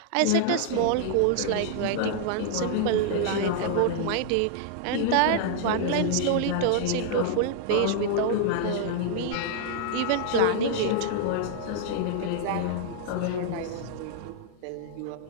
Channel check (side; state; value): both; different; correlation 0.00